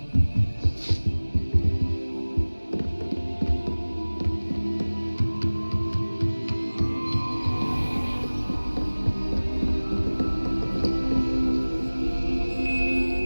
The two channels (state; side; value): inverted; both; correlation -1.00